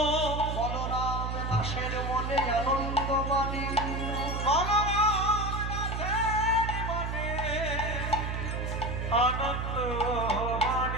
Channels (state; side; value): noise; right; hum, 3 dB below the sound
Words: বলরাম দাসের মনে আনন্দ বাণী, আনন্দ